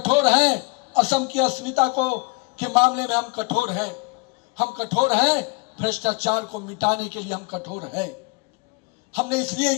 हैं। असम की अस्मिता को के मामले में हम कठोर हैं, हम कठोर हैं। भ्रष्टाचार को मिटाने के लिए हम कठोर हैं। हमने इसलिए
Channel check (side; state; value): right; quieter; 28.3 dB